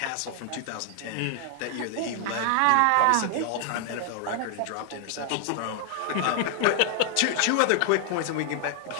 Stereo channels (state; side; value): different; both; correlation 0.00